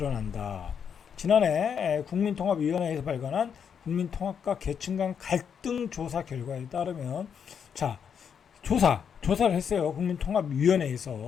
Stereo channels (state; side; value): quieter; right; 7.4 dB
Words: 지난해 국민통합위원회에서 발간한 국민통합과 계층 간 갈등 조사 결과에 따르면, 자, 조사를 했어요.